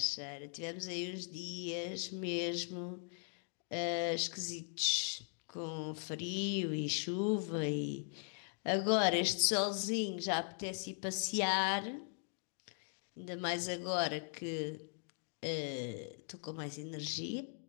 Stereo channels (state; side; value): silent; right; 52 dB below the other